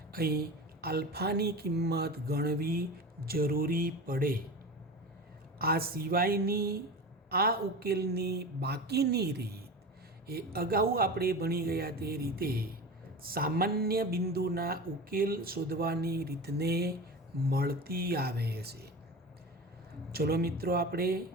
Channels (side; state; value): both; normal; correlation 0.30